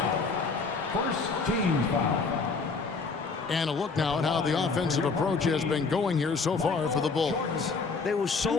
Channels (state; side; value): quieter; right; 4.5 dB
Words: First team foul. And a look now at how the offensive approach has been going here so far for the Bulls. They were